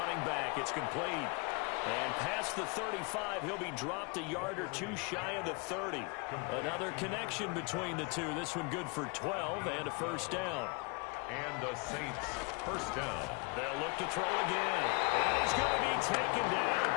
back. It's complete. And past the 35, he'll be dropped a yard or two shy of the 30. Another connection between the two. This one good for 12 and a first down. And the Saints first down. They'll look to throw again. And he's going to be taken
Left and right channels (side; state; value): right; quieter; 30.4 dB